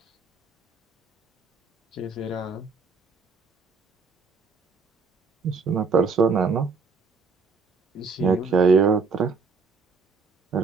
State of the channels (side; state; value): left; quieter; 4.8 dB